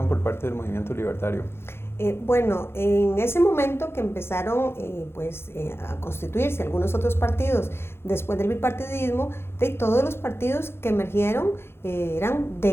por parte del Movimiento Libertario? Bueno, en ese momento que empezaron a constituirse algunos otros partidos después del bipartidismo, todos los partidos que emergieron eran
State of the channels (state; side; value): late; right; 0.12 ms